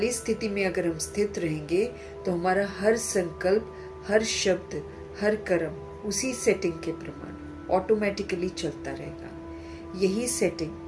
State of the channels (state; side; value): identical; both; correlation 1.00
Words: स्थिति में अगर हम स्थित रहेंगे तो हमारा हर संकल्प, हर शब्द, हर कर्म उसी सेटिंग के प्रमाण ऑटोमेटिकली चलता रहेगा। यही